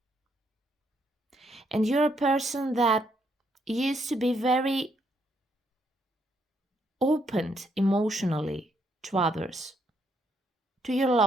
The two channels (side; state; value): both; normal; correlation 0.73